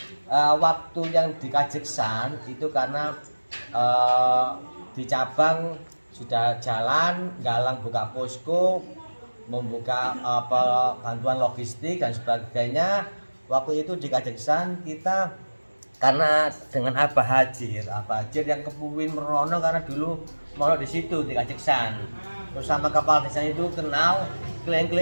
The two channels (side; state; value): both; inverted; correlation -1.00